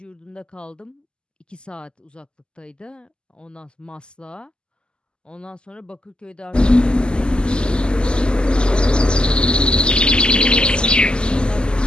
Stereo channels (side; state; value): right; late; 0.048 ms